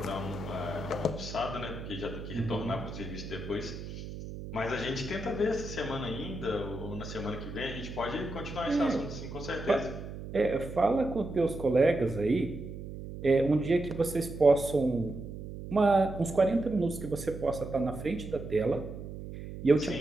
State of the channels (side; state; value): right; noise; hum, 10 dB below the sound